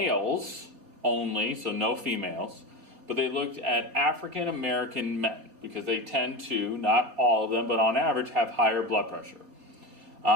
only, so no females, but they looked at African American men because they tend to, not all of them, but on average, have higher blood pressure.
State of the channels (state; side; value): late; left; 3.6 ms